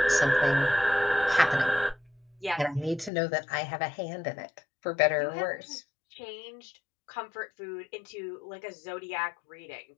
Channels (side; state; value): right; drops out; at 3.1 s